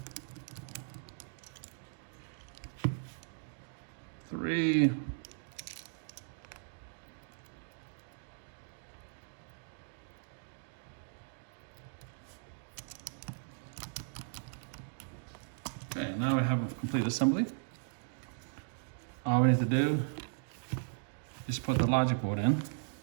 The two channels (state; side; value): silent; left; digital silence